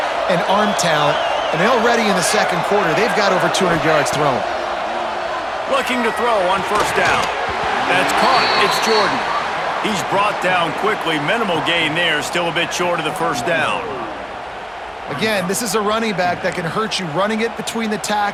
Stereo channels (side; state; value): both; identical; correlation 1.00